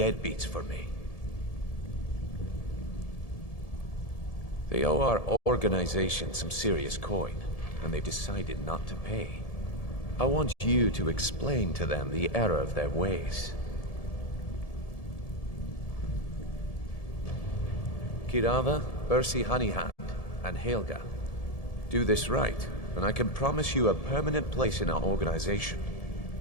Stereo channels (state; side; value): late; right; 1.7 ms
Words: for me? They owe our organization some serious coin, and they decided not to pay. I want you to explain to them the error of their ways. Kirava, Ursi Honeyhand, and Helga. Do this right, and I can promise you a permanent place in our organization.